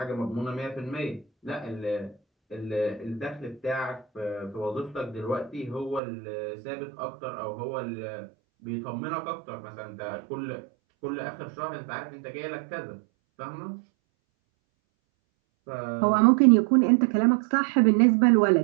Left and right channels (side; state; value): left; drops out; at 6.0 s